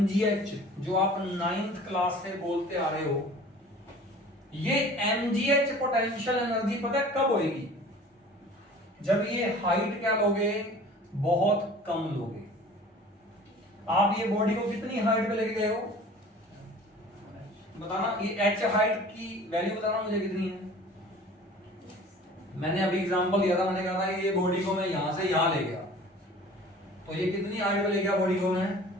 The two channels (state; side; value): normal; both; correlation 0.45